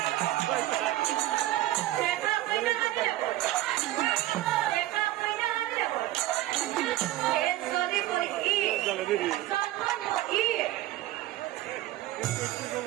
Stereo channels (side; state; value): left; quieter; 15.4 dB